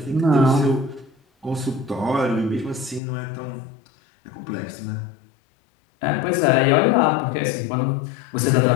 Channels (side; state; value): right; drops out; at 3.0 s